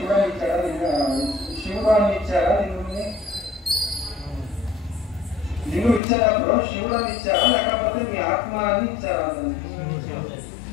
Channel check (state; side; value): drops out; right; at 6.0 s